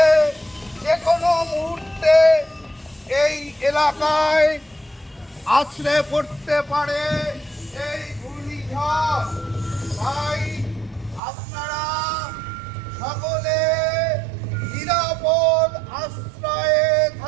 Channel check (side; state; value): left; drops out; at 11.2 s